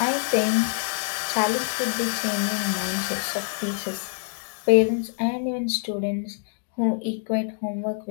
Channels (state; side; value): silent; right; 61 dB below the other